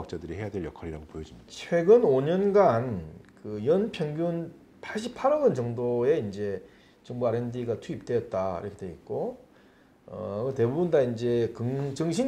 해야 될 역할이라고 보여집니다. 최근 5년간 그 연 평균 88억 원 정도의 이제 정부 R&D가 투입되었다 이렇게 돼 있고 대부분 다 이제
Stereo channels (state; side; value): identical; both; correlation 1.00